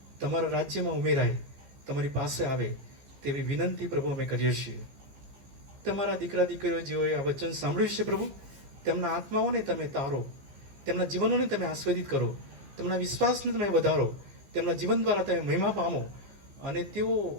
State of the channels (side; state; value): left; late; 15 ms